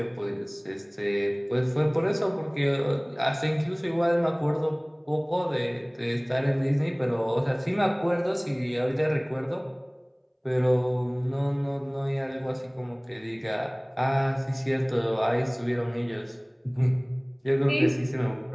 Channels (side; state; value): both; identical; correlation 1.00